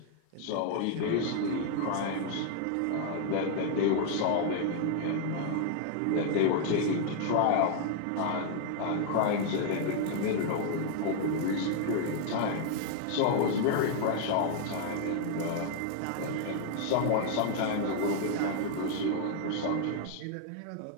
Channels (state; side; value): different; both; correlation 0.00